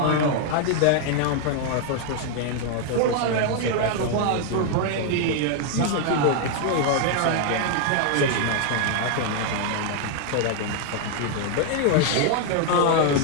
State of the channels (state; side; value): different; both; correlation 0.00